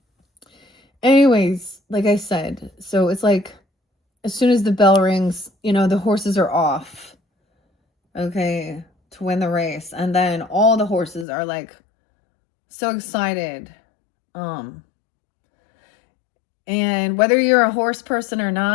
Anyways, like I said, so it's like as soon as the bell rings, you know, the horses are off, okay, to win the race. And then all the horses are like so excited. And whether you're a horse person or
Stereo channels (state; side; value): drops out; right; at 11.2 s